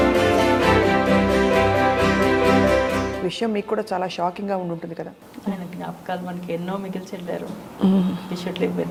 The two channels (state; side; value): identical; both; correlation 1.00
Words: విషయం మీకు కూడా చాలా షాకింగ్ గా ఉంటుంది కదా. ఆయన జ్ఞాపకాలు మనకి ఎన్నో మిగిల్చి వెళ్ళారు. We should live with